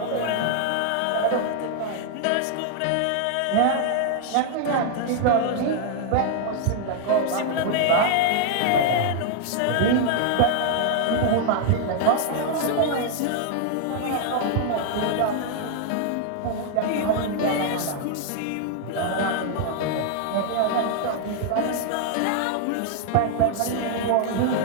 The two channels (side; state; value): both; different; correlation 0.00